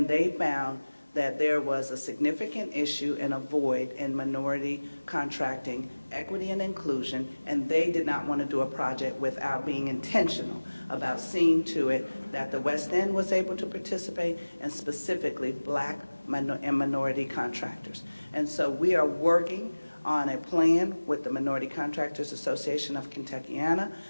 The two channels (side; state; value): both; inverted; correlation -1.00